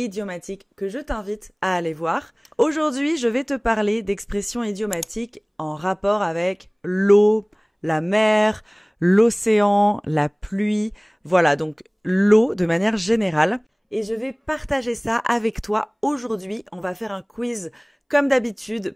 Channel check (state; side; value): identical; both; correlation 1.00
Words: que je t'invite à aller voir. Aujourd'hui, je vais te parler d'expressions idiomatiques en rapport avec l'eau, la mer, l'océan, la pluie. Voilà, donc l'eau de manière générale. Et je vais partager ça avec toi aujourd'hui. On va faire un quiz comme d'habitude